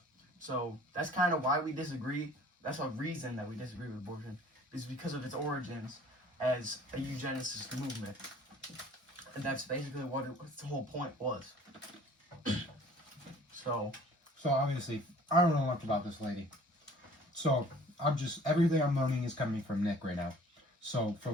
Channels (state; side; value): normal; both; correlation 0.51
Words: so that's kind of why we disagree. That's a reason that we disagree with abortion, is because of its origins as a eugenicist movement. And that's basically what the whole point was. So obviously, I don't know much about this lady. So everything I'm learning is coming from Nick right now. So